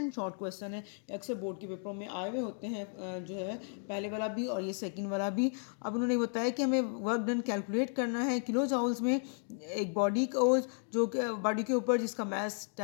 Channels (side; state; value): right; silent; 55 dB below the other